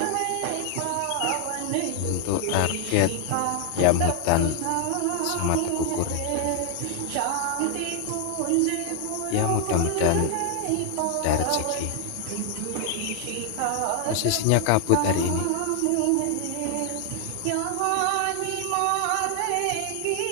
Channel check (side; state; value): both; different; correlation 0.00